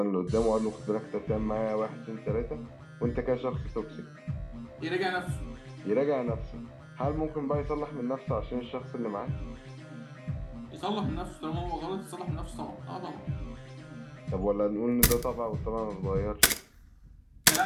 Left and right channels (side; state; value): both; identical; correlation 1.00